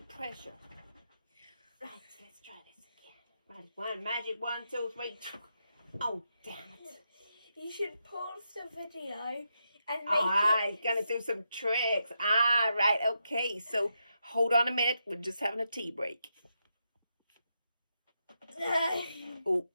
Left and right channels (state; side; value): inverted; both; correlation -0.84